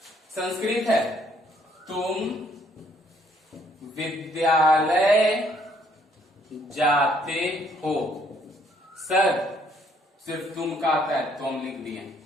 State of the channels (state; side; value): normal; both; correlation 0.66